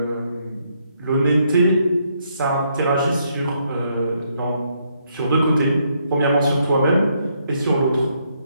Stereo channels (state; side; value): inverted; both; correlation -0.74